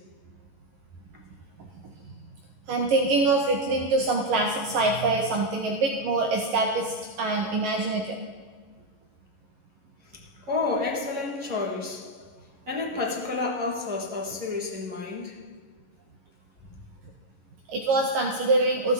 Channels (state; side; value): late; left; 11 ms